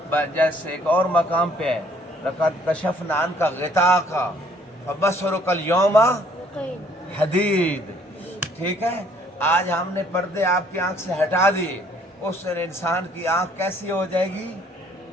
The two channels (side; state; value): both; normal; correlation 0.61